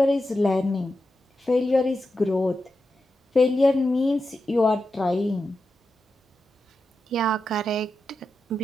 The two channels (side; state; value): both; normal; correlation 0.89